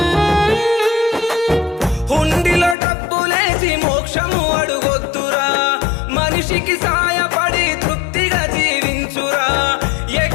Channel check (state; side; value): drops out; right; at 2.8 s